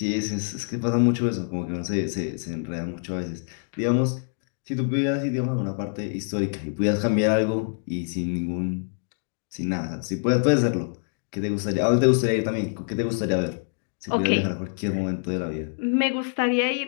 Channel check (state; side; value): silent; right; digital silence